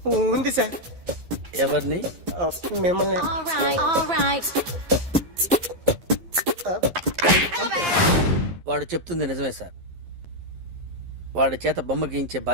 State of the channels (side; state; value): left; late; 11 ms